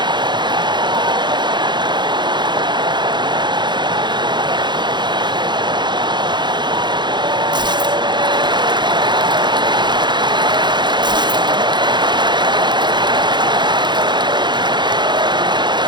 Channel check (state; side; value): late; left; 0.22 ms